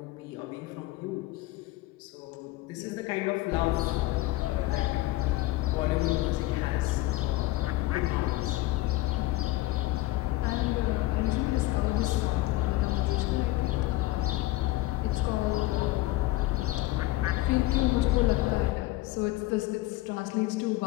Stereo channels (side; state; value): right; quieter; 18.1 dB